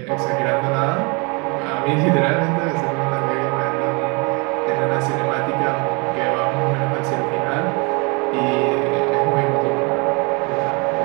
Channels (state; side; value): quieter; left; 31.0 dB